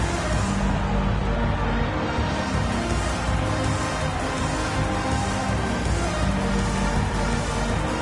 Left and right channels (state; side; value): identical; both; correlation 1.00